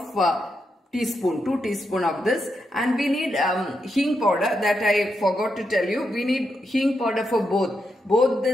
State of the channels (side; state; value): both; normal; correlation 0.84